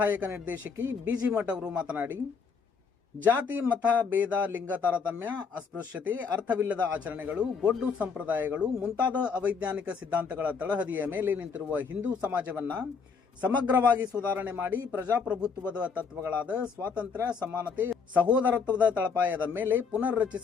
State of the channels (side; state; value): right; quieter; 5.6 dB